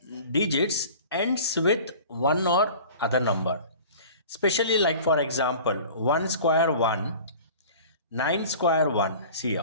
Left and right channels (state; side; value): inverted; both; correlation -0.42